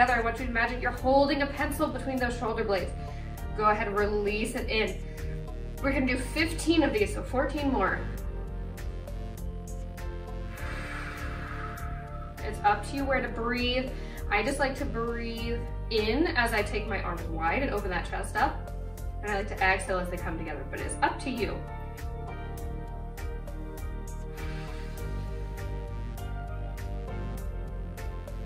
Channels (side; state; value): both; identical; correlation 1.00